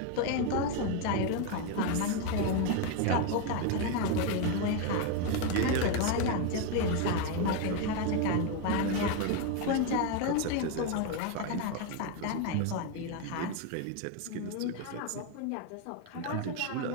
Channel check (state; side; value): different; both; correlation 0.01